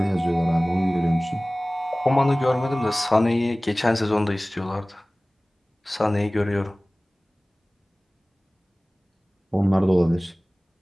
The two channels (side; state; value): both; normal; correlation 0.98